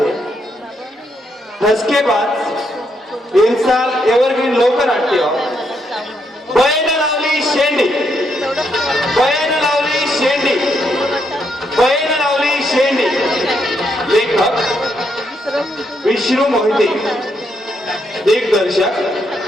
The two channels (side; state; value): both; normal; correlation 0.77